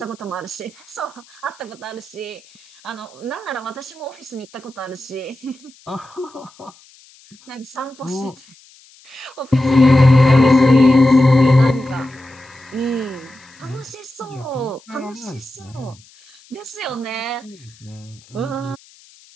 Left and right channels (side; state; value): left; noise; hiss, 26 dB below the sound